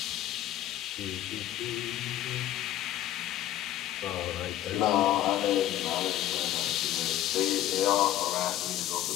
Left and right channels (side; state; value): right; quieter; 12.9 dB